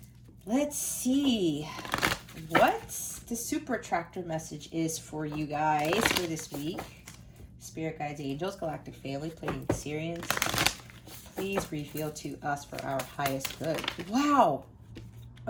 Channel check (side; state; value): both; identical; correlation 1.00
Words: Let's see what the super attractor message is for you guys for this week. Spirit guides, angels, galactic family, playing Syrians. Please reveal to us for our highest good. Wow.